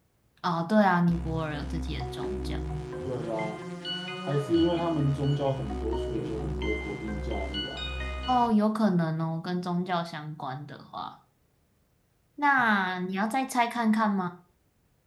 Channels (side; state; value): both; identical; correlation 1.00